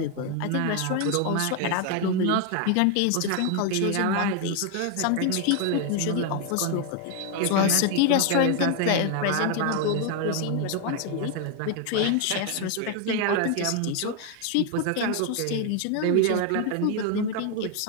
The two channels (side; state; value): both; different; correlation 0.01